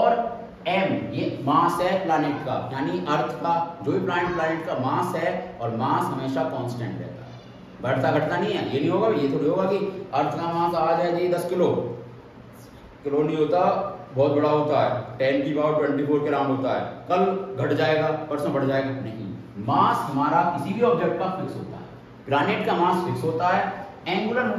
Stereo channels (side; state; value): both; identical; correlation 1.00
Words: m ये मास है प्लैनेट का, यानी अर्थ का, जो भी प्लैनेट का मास है, और मास हमेशा कांस्टेंट रहता है, बढ़ता घटता नहीं है। ये नहीं होगा, ये थोड़ी होगा कि अर्थ का मास आज है जी 10 किलो नहीं होता, बहुत बड़ा होता है, 10 की पावर 24 के राउंड होता है, कल घट जाएगा परसों बढ़ जाएगा, नहीं। मास हमारा किसी भी ऑब्जेक्ट का फिक्स होता है, प्लैनेट का मास फिक्स होता है, एंगुलर